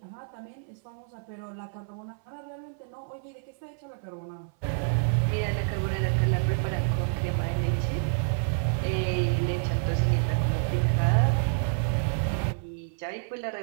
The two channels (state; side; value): silent; left; 59 dB below the other